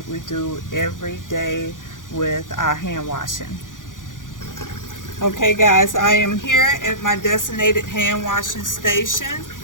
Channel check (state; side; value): late; right; 0.88 ms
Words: we do every day with our hand washing. Okay guys, I am here at my designated hand washing station,